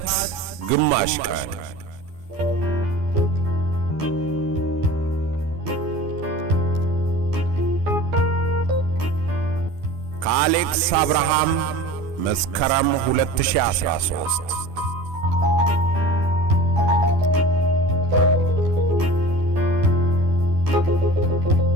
ግማሽ ቀን ከአሌክስ አብርሃም መስከረም 2013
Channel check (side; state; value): left; late; 12 ms